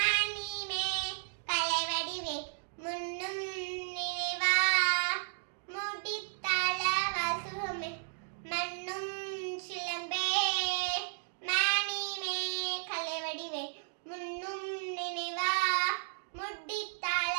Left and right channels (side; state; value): left; silent; digital silence